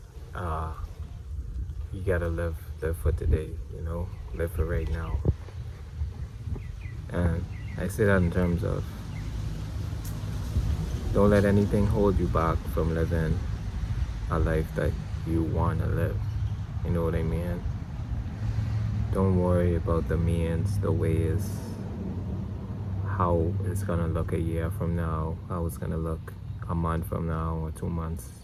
Uh, you gotta live for today, live for right now. And I say that in terms of don't let anything hold you back from living a life that you wanna live. You know what I mean? Don't worry about the means, the ways, how it's gonna look a year from now, how it's gonna look a month from now or 2 months.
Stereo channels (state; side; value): identical; both; correlation 1.00